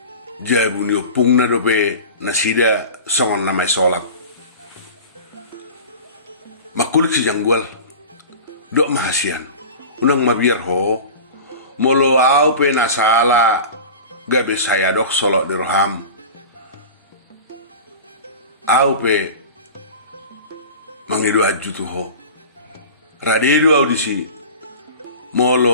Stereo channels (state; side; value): inverted; both; correlation -0.35